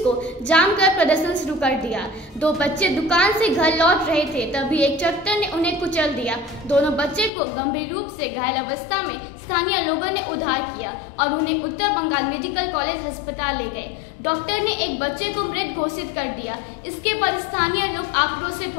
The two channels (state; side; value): drops out; right; at 7.3 s